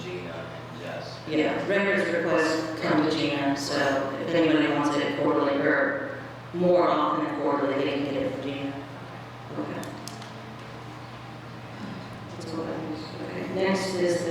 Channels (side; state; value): both; identical; correlation 1.00